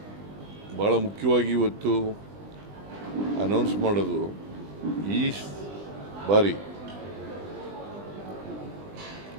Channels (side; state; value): left; late; 20 ms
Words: ಬಹಳ ಮುಖ್ಯವಾಗಿ ಇವತ್ತು ಅನೌನ್ಸ್ ಮಾಡೋದು, ಈ ಬಾರಿ